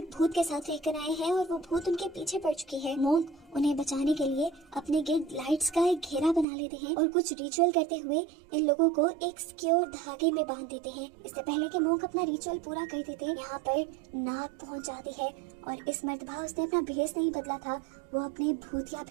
भूत के साथ रहकर आए हैं और वो भूत उनके पीछे पड़ चुकी है। मोंक उन्हें बचाने के लिए अपने गिर्द लाइट्स का एक घेरा बना लेते हैं और कुछ रिचुअल करते हुए इन लोगों को एक सिक्योर धागे में बांध देते हैं। इससे पहले कि मोंक अपना रिचुअल पूरा कर देते यहाँ पर नाग पहुंच जाती है और इस मर्तबा उसने अपना भेष नहीं बदला था, वो अपने भूतिया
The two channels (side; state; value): left; drops out; at 6.5 s